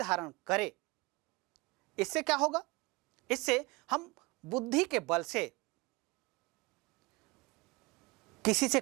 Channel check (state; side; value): quieter; left; 24.2 dB